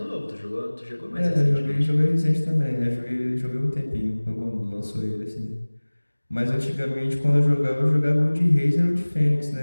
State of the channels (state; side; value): inverted; both; correlation -1.00